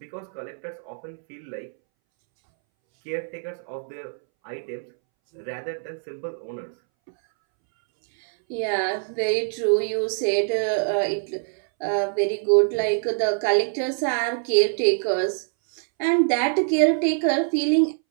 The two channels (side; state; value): left; silent; 62 dB below the other